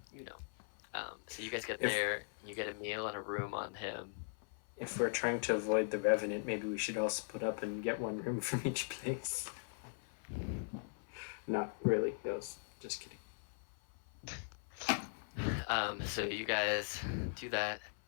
so you guys get there, you get a meal and a room on him. If we're trying to avoid the Revenant, maybe we should all split up and get 1 room from each place. Not really. That was just kidding. So you guys do that.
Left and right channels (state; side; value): silent; right; 51 dB below the other